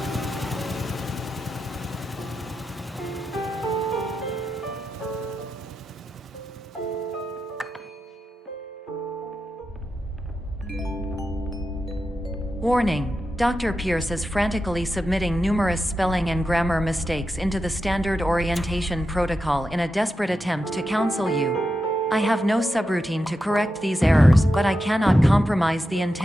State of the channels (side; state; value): both; normal; correlation 0.89